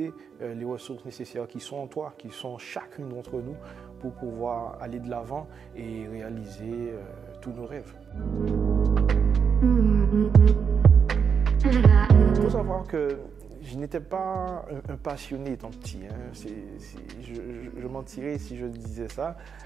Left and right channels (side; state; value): left; quieter; 6.6 dB